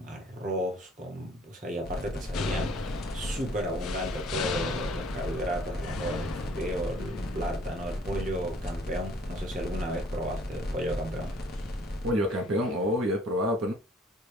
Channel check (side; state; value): both; normal; correlation 0.57